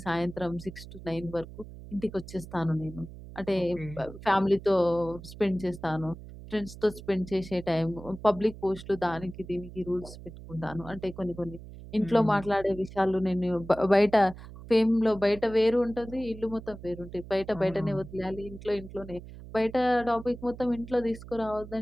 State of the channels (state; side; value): noise; right; hum, 15 dB below the sound